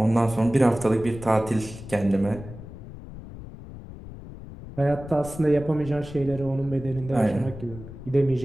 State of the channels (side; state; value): left; noise; rumble, 14 dB below the sound